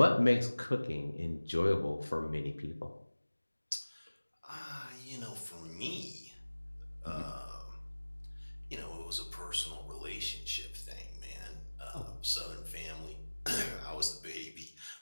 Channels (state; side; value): inverted; both; correlation -1.00